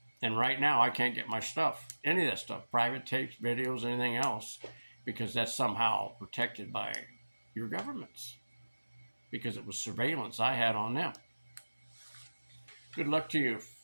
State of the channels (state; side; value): inverted; both; correlation -1.00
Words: And right now, I can't get my stuff, any of that stuff, private tapes, videos, anything else, because that's somehow protected by your governments, because it was surveillance I had on them. Good luck to you.